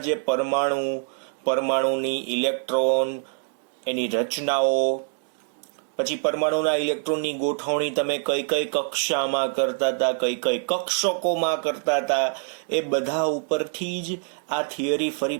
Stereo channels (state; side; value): silent; left; 62 dB below the other